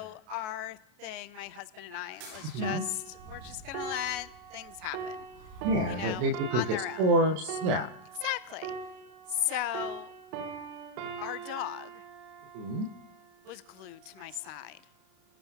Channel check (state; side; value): late; left; 33 ms